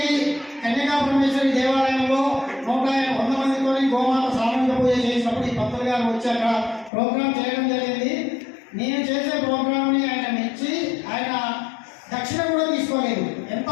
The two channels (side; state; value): right; drops out; at 6.9 s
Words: కన్యకా పరమేశ్వరి దేవాలయంలో 100 మందితో గోమాత సామూహిక పూజ చేసినప్పుడు ఈ పంతులు గారు వచ్చాక ప్రోగ్రామ్ చేయడం జరిగింది. నేను చేసే ప్రోగ్రామ్ ని ఆయన మెచ్చి ఆయన దక్షిణ కూడా తీసుకోలేదు. ఎంత